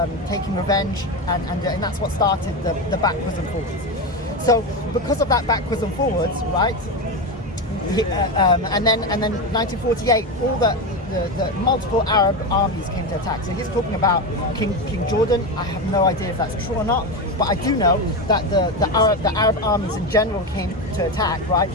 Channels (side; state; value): both; normal; correlation 0.16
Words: taking revenge, and that's what started the backwards and forwards. So because of that backwards and forwards, right? And then 1948, all the multiple Arab armies came to attack. So he's talking about King Jordan. I have no idea if that's true or not, but I do know that the Arab armies in general came to attack. Right?